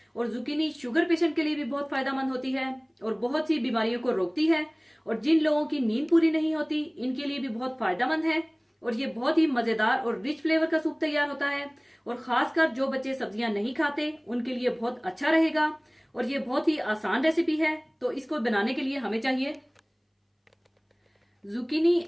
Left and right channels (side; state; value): both; identical; correlation 1.00